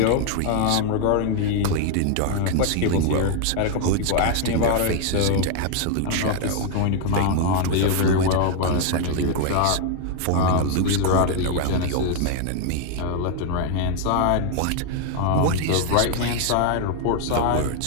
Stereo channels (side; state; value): both; different; correlation 0.00